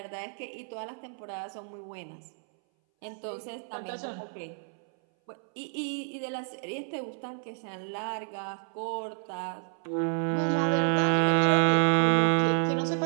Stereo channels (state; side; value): silent; left; 58 dB below the other